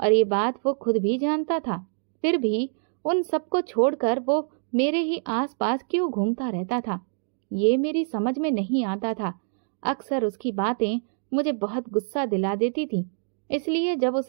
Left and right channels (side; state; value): left; silent; digital silence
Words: ये बात वो खुद भी जानता था। फिर भी उन सबको छोड़कर वो मेरे ही आसपास क्यों घूमता रहता था, ये मेरी समझ में नहीं आता था। अक्सर उसकी बातें मुझे बहुत गुस्सा दिला देती थी, इसलिए जब